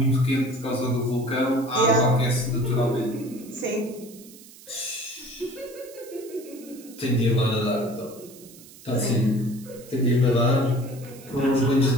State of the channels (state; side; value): noise; right; hiss, 20 dB below the sound